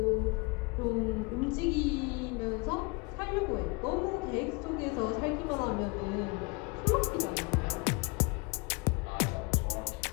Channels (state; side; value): quieter; right; 28.6 dB